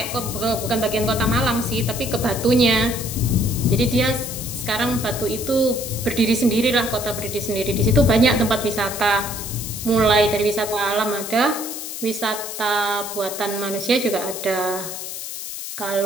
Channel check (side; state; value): left; noise; hiss, 8 dB below the sound